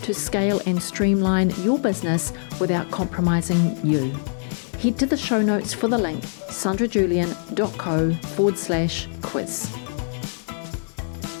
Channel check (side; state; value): right; silent; 63 dB below the other